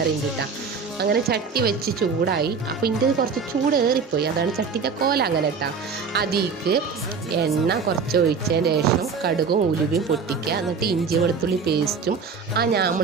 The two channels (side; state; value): left; quieter; 5.5 dB